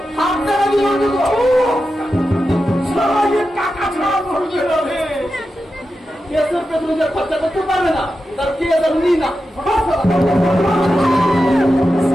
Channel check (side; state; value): both; normal; correlation 0.90